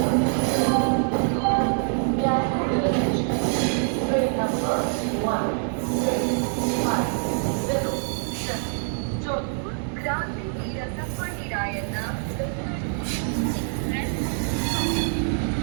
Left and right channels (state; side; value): silent; left; 60 dB below the other